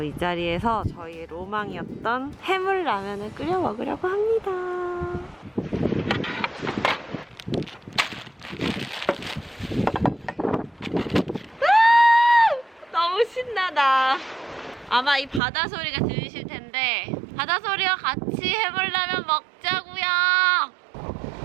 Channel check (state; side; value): drops out; left; at 15.4 s